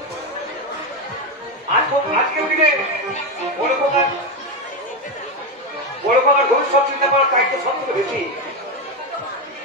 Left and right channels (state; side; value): normal; both; correlation 0.11